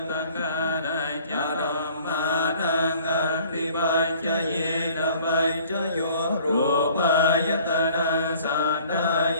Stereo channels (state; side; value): inverted; both; correlation -0.53